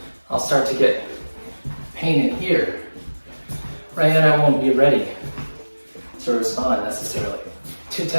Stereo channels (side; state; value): both; inverted; correlation -1.00